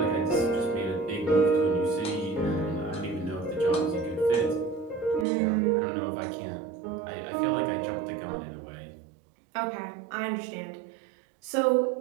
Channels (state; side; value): drops out; left; at 5.2 s